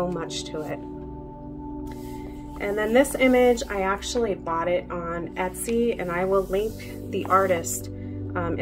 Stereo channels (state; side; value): identical; both; correlation 1.00